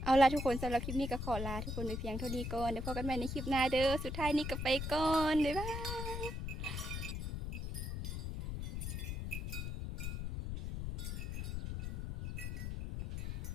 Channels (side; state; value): left; noise; rumble, 3 dB below the sound